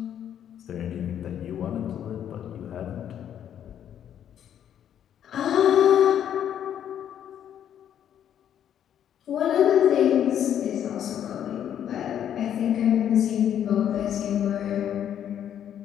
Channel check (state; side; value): quieter; right; 9.8 dB